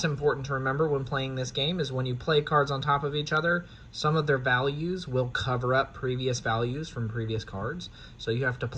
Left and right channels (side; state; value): both; identical; correlation 1.00